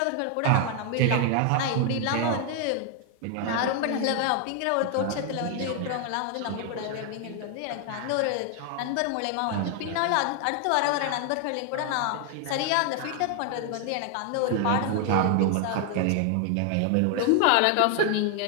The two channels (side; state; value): both; different; correlation 0.00